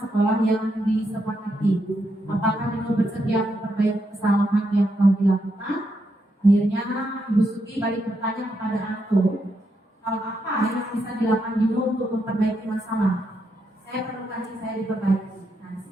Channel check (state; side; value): normal; both; correlation 0.81